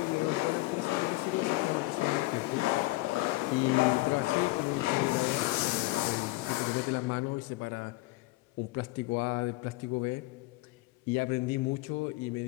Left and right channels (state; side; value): quieter; right; 20.6 dB